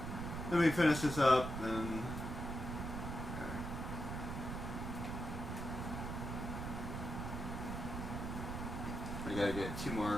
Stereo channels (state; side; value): noise; right; rumble, 4 dB below the sound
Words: let me finish this up and. I gotta get 2